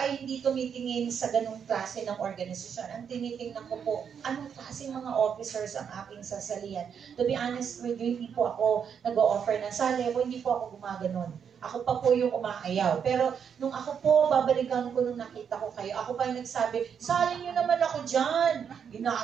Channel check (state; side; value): quieter; left; 7.4 dB